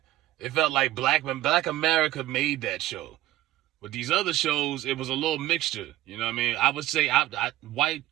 It felt like Black America made that show. With these other shows, it was a little mixture. You know what I mean? I would say white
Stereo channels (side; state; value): left; quieter; 14.9 dB